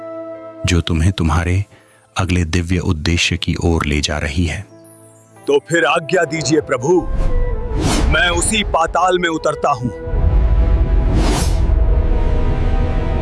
जो तुम्हें तुम्हारे अगले दिव्य उद्देश्य की ओर ले जा रही है। तो फिर आज्ञा दीजिए प्रभु, मैं उसी पाताल में उतरता हूं।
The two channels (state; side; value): identical; both; correlation 1.00